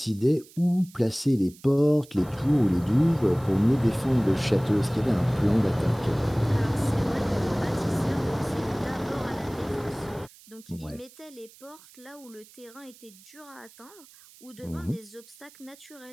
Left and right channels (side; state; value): right; noise; hiss, 23 dB below the sound